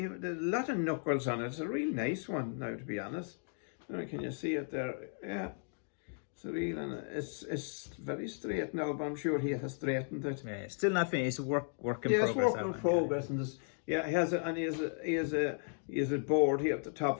of knuckles on it. It's a real nice one now, to be honest. Can you see it there? Yeah. It's real, and it's very straight now, but I'm sure he has straightened it. Yeah, it's still not finished. It's work in yeah, progress. It's work in progress, and this, yeah, he has a board here at the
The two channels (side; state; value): right; silent; 54 dB below the other